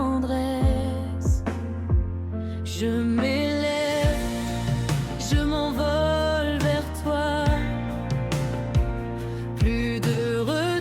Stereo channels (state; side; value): identical; both; correlation 1.00